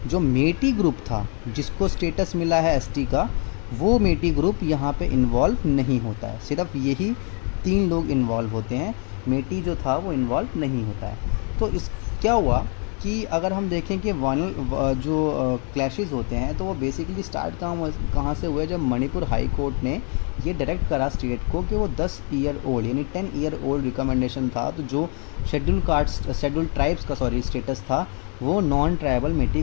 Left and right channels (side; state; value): right; quieter; 39.0 dB